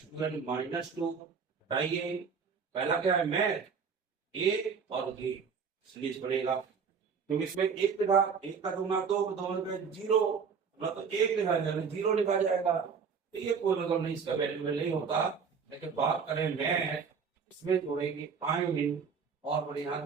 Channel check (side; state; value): left; quieter; 6.0 dB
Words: -2 हटाइए। पहला क्या है, मैथ, ए और ए, सीरीज बनेगा, क्योंकि इसमें एक लिखा, 1 का 2 ना 2, 2 का 0, ना तो 1 लिखा जाएगा 0 लिखा जाएगा, तो ये कोई मतलब नहीं, इसका वैल्यू नहीं होता। लेकिन बात करें मैथ, इसमें जोड़ेंगे आइन और यहाँ